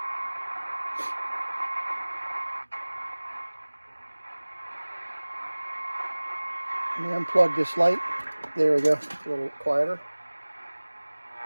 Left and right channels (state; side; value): inverted; both; correlation -1.00